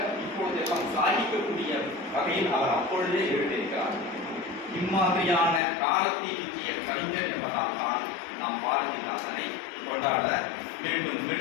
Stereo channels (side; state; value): right; drops out; at 5.6 s